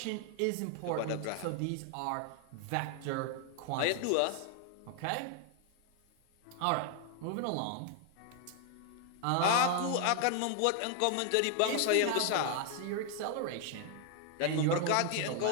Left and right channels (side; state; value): both; different; correlation 0.00